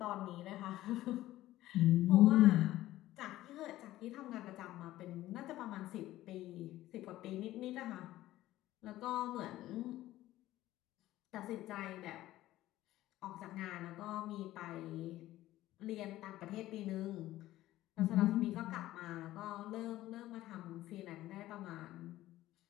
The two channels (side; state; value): right; quieter; 15.3 dB